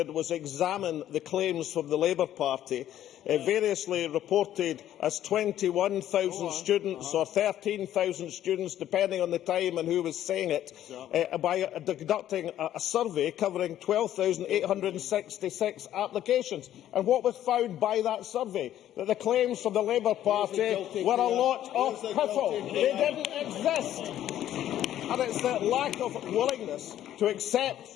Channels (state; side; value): quieter; right; 12.0 dB